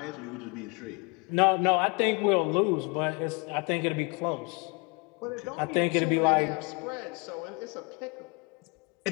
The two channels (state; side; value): quieter; right; 30.5 dB